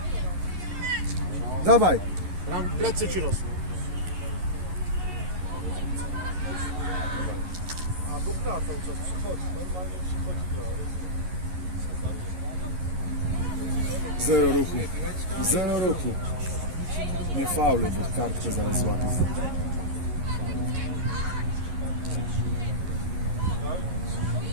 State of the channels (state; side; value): late; left; 11 ms